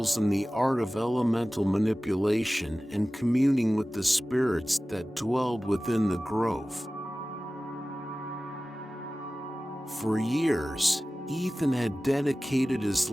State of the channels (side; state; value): both; normal; correlation 0.97